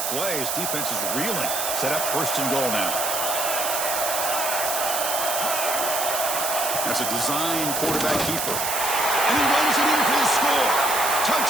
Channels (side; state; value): right; noise; hiss, 1 dB below the sound